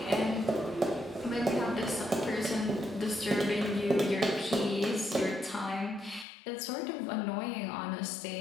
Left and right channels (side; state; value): right; drops out; at 6.2 s